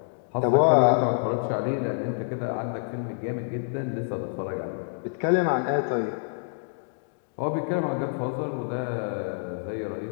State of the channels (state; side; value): silent; right; digital silence